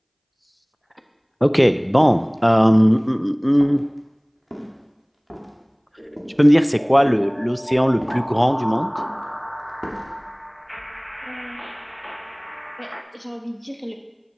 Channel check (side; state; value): both; identical; correlation 1.00